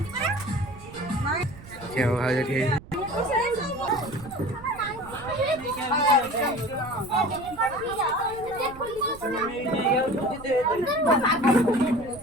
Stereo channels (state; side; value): noise; right; rumble, 18 dB below the sound